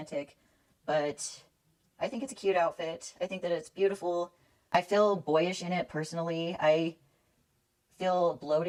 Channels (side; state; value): both; identical; correlation 1.00